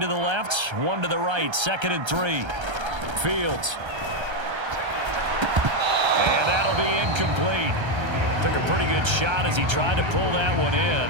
the left, 1 to the right. 2nd and 3. Fields. And that'll be incomplete. Took a pretty good shot as he tried to pull that one in.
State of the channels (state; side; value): late; left; 1.3 ms